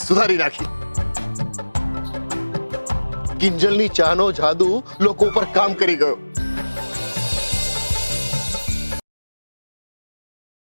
સુધારી નાખી. કિંજલની ચાનો જાદુ લોકો ઉપર કામ કરી ગયો.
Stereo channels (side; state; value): both; inverted; correlation -1.00